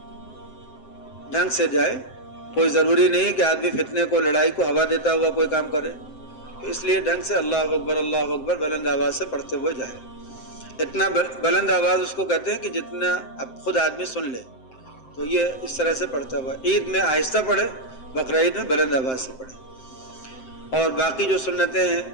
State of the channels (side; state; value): right; late; 7.7 ms